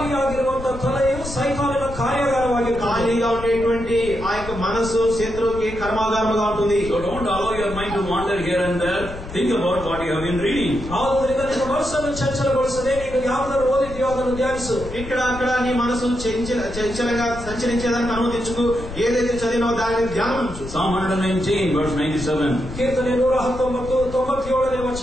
ತಲೆಯು ಸೈತಾನನ ಕಾರ್ಯಾಗಾರವಾಗಿರುತ್ತದೆ. ఖాళీగా ఉండేటువంటి ఆ యొక్క మనసు శత్రువుకి కర్మాగారముగా ఉంటుంది. So don't allow your mind to wander here and there. Think about what you have been reading. ಆದ್ದರಿಂದ ನಿನ್ನ ಮನಸ್ಸನ್ನು ಚಂಚಲಗೊಳಿಸದೆ ನೀನು ಯಾವುದನ್ನು ಓದಿದೆಯೋ ಅದನ್ನು ಧ್ಯಾನಿಸು. ఇక్కడ అక్కడ నీ మనసు చంచలంగా సంచరించేదానికి అనుమతించుకు. ఏదైతే చదివినావో దానిని ధ్యానించు. Psalm 119 verse 97. ಕೀರ್ತನೆ 119:97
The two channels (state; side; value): noise; left; rumble, 11 dB below the sound